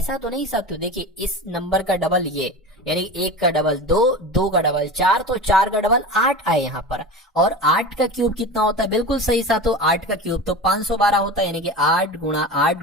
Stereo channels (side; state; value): both; normal; correlation 0.30